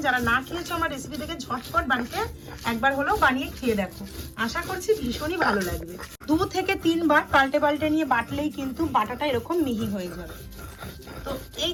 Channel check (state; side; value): identical; both; correlation 1.00